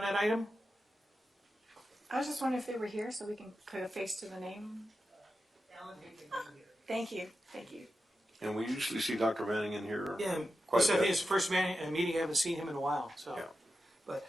that item? I was just wondering if they were here so we can put a face to the name. Thank you. Thank you. And we usually see Dr. Manning in here Yeah, quite this a I think bit. is the first meeting. I haven't seen him in a while. So, Yeah. but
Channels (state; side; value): normal; both; correlation 0.90